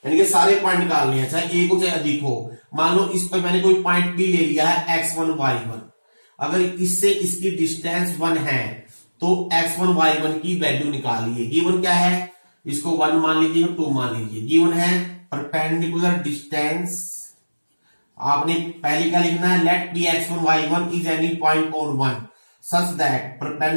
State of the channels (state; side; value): inverted; both; correlation -1.00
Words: यानी कि सारे पॉइंट निकालने हैं, चाहे एक हो चाहे अधिक हो। मान लो इस पर मैंने कोई पॉइंट भी ले लिया है x1 y1, अगर इससे इसकी डिस्टेंस 1 है तो x1 y1 की वैल्यू निकालिए। गिवन क्या है, इसको 1 मान लीजिए, 2 मान लीजिए। गिवन है परपेंडिकुलर डिस्टेंस, आपने पहले क्या लिखना है, let P x1 y1 is any point on 1 such that